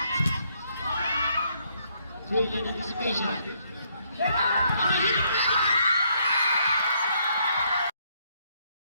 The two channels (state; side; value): inverted; both; correlation -0.71